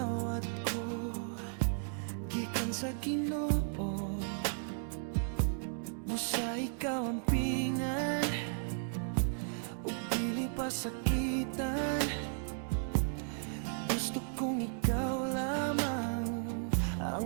ko gikan sa Ginoo. Busa ikaw ang pingan ug dili pa sakitan. Gusto kong ikaw lamang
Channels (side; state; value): left; silent; digital silence